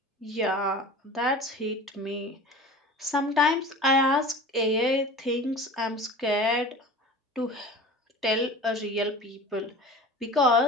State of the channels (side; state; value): both; normal; correlation 0.38